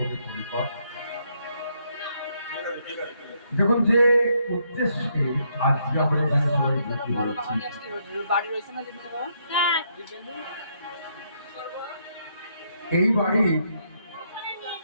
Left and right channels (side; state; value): both; inverted; correlation -0.75